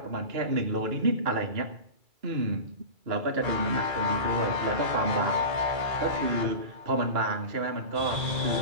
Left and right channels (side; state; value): left; late; 2.3 ms